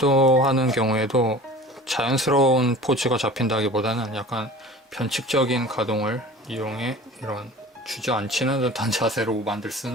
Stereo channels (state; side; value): normal; both; correlation 0.41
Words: 경우에도 자연스러운 포즈가 잡힌다기보다는 약간 변칙적인 가동을 이용해 이런 주저앉히는 듯한 자세로 만들